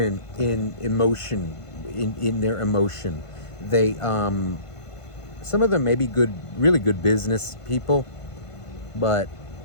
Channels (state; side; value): late; right; 1.5 ms